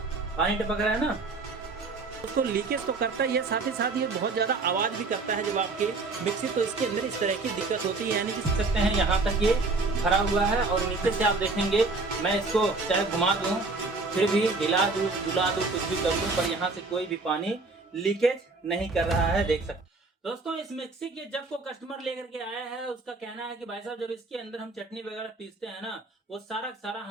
पानी टपक रहा है ना। तो लीकेज तो करता ही है, साथ ही साथ ये बहुत ज़्यादा आवाज़ भी करता है जब आपकी मिक्सी, तो इसके अंदर इस तरह की दिक्कत होती है। यानी कि सकते हैं यहाँ तक ये भरा हुआ है और नीचे से आप देखेंगे मैं इसको चाहे घुमा दूँ फिर भी हिला दूँ डुला दूँ कुछ भी कर दूँ पर यहाँ से कोई भी पानी लीकेज नहीं कर रहा है, देख सकते। दोस्तों इस मिक्सी के जग को कस्टमर लेकर के आया है, उसका कहना है कि भाई साहब जब इसके अंदर हम चटनी वगैरह पीसते हैं ना, वो सारा सारा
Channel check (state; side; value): quieter; left; 3.6 dB